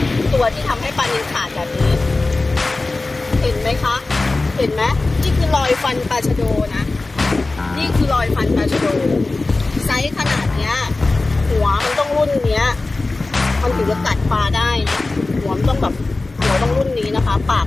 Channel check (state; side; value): quieter; right; 3.3 dB